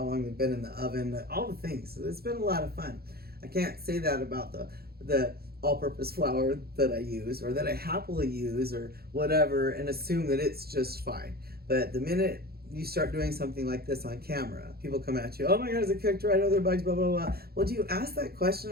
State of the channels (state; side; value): late; left; 0.45 ms